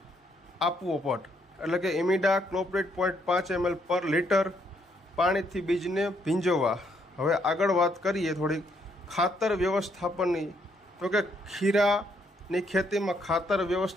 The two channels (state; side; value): normal; both; correlation 0.72